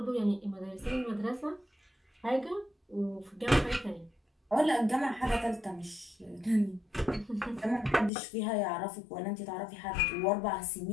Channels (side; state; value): right; drops out; at 8.1 s